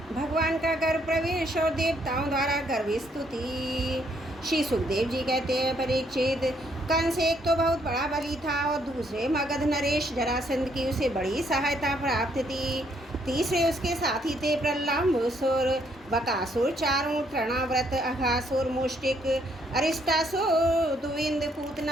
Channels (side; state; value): both; normal; correlation 0.70